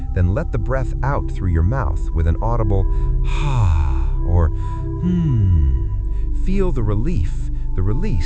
then let the breath out through your mouth with an audible ha or Feel the relief, the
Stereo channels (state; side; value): identical; both; correlation 1.00